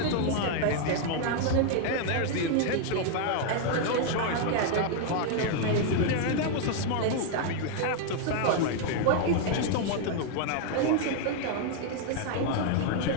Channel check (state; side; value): different; both; correlation 0.00